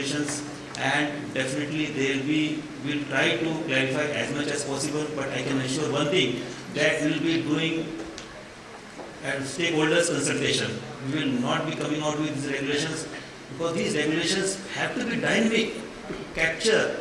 and definitely we'll try to clarify as much as possible, but I can assure one thing, that we'll be doing a stakeholders consultation. We will not be coming out with these regulations, because these regulations have to be dynamic to capture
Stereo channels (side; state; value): both; identical; correlation 1.00